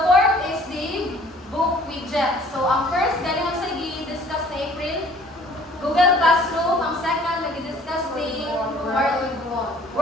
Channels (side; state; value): both; normal; correlation 0.54